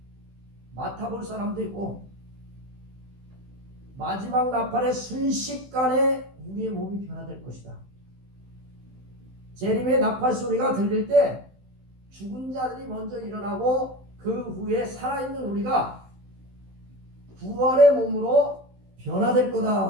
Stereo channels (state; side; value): late; left; 16 ms